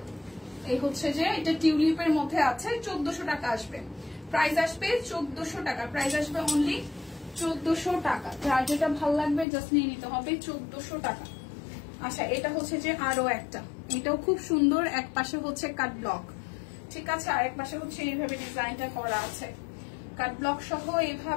এই হচ্ছে যে এটা টিউলিপের মধ্যে আছে, 1400 টাকা আসবে। প্রাইস আসবে 1400 টাকা, প্রাইস আসবে অনলি 1400 টাকা। যার যেটা ভালো লাগবে জাস্ট নিয়ে নিতে হবে, 1400 টাকা। আচ্ছা এটা হচ্ছে যে আরো একটা, এটাও খুব সুন্দর, এক পাশে হচ্ছে কাট ব্লক, ঠিক আছে, আরেক পাশে হচ্ছে এইভাবে ডিজাইনটা করা আছে, কাট ব্লক সহ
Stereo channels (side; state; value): right; drops out; at 9.5 s